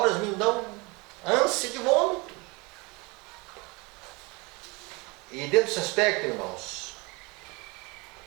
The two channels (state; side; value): quieter; left; 27.0 dB